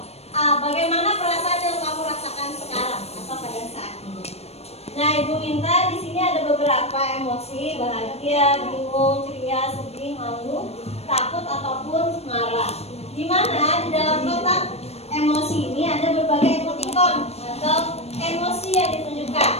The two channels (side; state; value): right; late; 0.30 ms